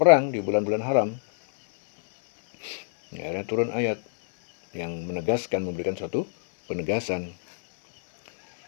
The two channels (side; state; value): right; silent; digital silence